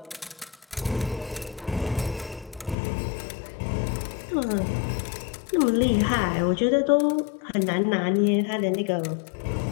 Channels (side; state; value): right; drops out; at 2.8 s